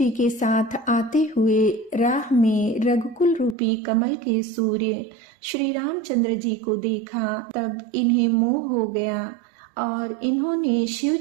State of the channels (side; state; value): left; drops out; at 3.6 s